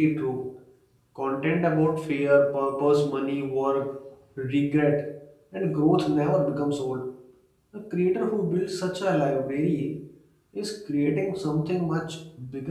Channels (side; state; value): both; identical; correlation 1.00